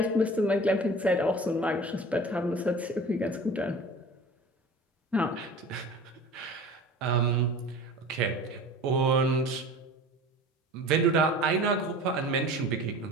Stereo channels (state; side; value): normal; both; correlation 0.40